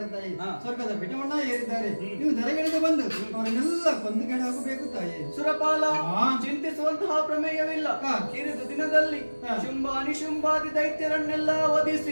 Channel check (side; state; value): both; inverted; correlation -1.00